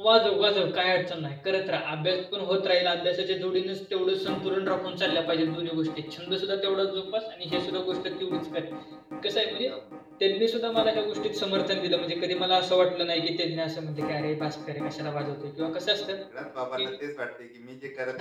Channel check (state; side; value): identical; both; correlation 1.00